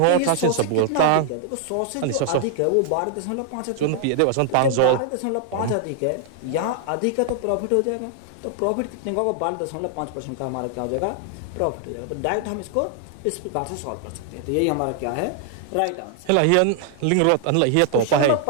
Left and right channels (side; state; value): both; different; correlation 0.00